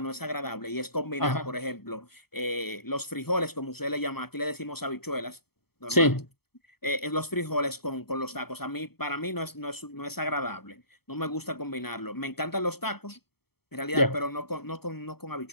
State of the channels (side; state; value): right; late; 0.96 ms